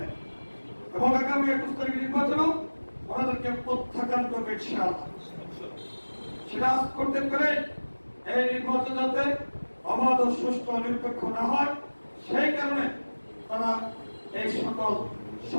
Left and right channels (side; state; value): both; inverted; correlation -1.00